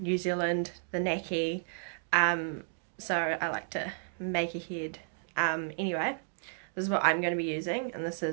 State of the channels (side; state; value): left; silent; digital silence